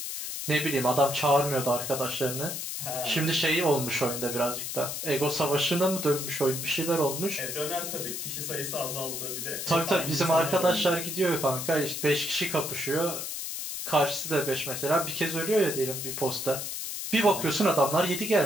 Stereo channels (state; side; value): noise; left; hiss, 5 dB below the sound